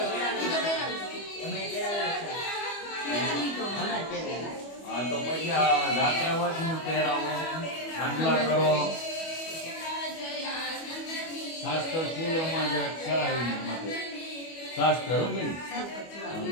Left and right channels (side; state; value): right; late; 25 ms